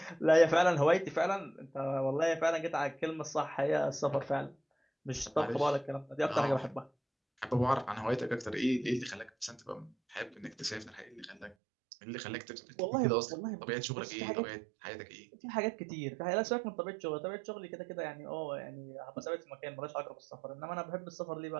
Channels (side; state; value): left; drops out; at 11.6 s